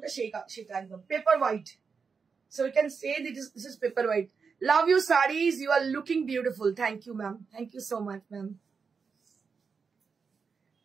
সেটা একদম paper white. So we can say that this is paper white. Love your sarees, you are looking beautiful. Thank you ma'am, thank you so much ma'am.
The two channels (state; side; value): quieter; left; 5.5 dB